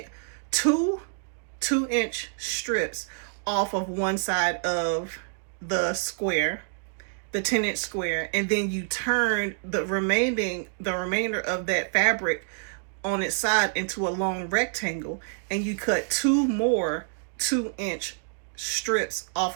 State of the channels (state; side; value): silent; left; digital silence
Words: 2-inch strips off of one side of the square, the 10-inch square, and then you turn the remainder of that fabric on its side into a long rectangle, and you cut 2 more 2-inch strips off